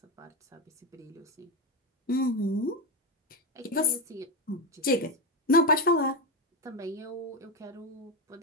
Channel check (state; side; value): normal; both; correlation 0.10